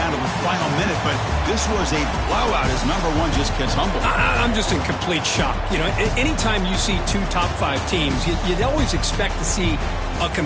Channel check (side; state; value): both; identical; correlation 1.00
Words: to the final minute, but this was a blowout as number 1 just gets humbled. I'm just in complete shock. You know, anytime you see 2 top 5 teams, you'd always expect to see a